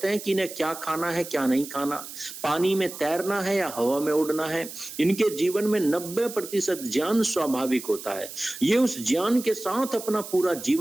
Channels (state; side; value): noise; right; hiss, 12 dB below the sound